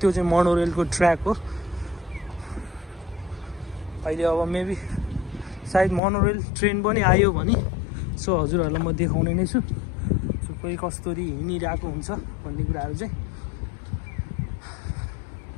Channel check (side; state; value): right; drops out; at 6.0 s